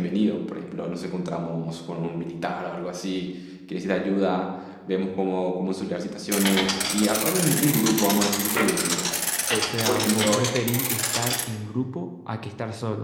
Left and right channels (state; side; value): identical; both; correlation 1.00